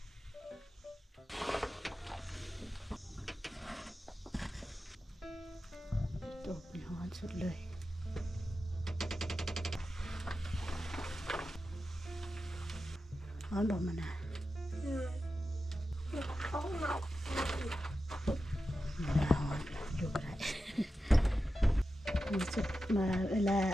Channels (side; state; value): both; normal; correlation 0.91